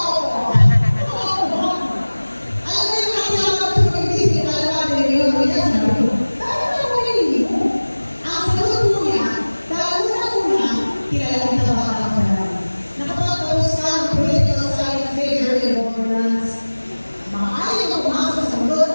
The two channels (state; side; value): inverted; both; correlation -1.00